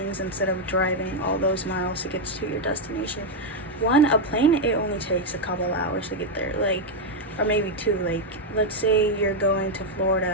instead of driving all those miles to get to your destination. One, a plane, it only takes a couple hours to get there, or maybe two. Let's say you're going to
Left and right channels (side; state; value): both; normal; correlation 0.02